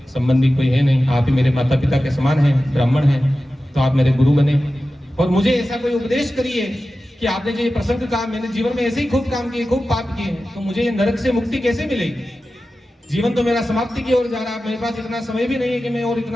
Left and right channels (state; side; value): normal; both; correlation 0.94